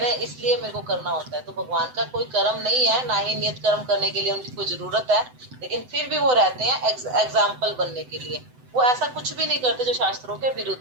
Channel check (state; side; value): late; left; 7.9 ms